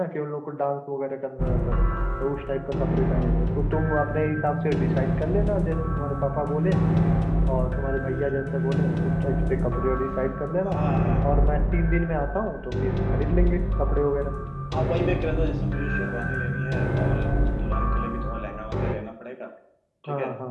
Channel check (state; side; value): identical; both; correlation 1.00